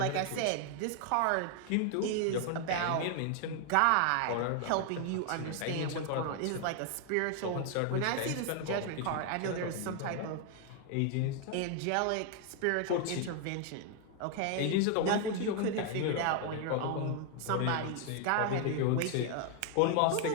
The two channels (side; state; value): both; different; correlation 0.00